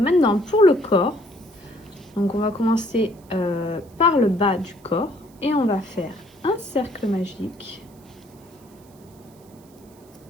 pour le corps, donc on va commencer par le bas du corps et on va faire un cercle magique.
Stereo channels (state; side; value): noise; right; hiss, 29 dB below the sound